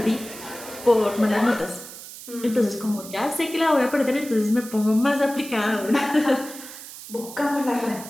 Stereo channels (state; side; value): noise; right; hiss, 14 dB below the sound